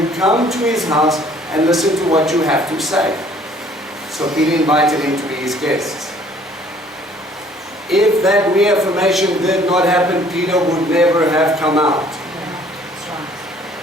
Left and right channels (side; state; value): both; normal; correlation 0.57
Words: come to his house and listen to what you have to say. So Peter invited him to be his guests. If that reaffirmation did not happen, Peter would never have come out.